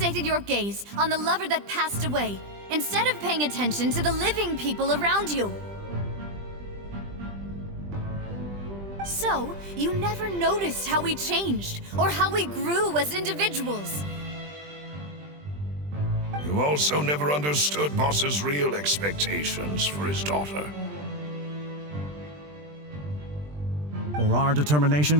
your gaze on the lover that passed away, instead of paying attention to the living people around you. So, you never noticed how we changed, or how we grew as individuals. You also never understood Boss's real expectations for his daughter. Or our determination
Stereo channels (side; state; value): left; late; 20 ms